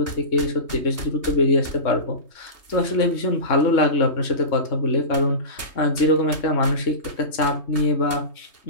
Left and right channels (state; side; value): late; right; 3.2 ms